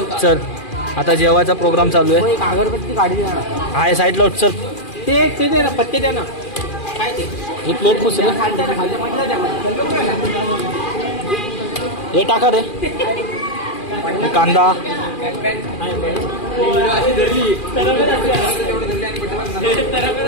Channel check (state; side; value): late; right; 2.4 ms